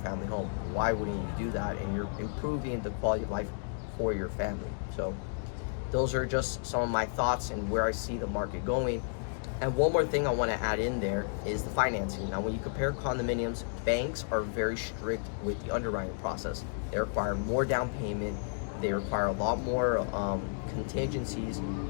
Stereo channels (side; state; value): right; silent; digital silence